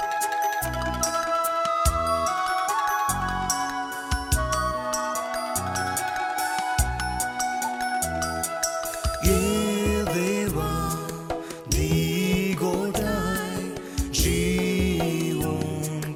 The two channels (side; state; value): both; identical; correlation 1.00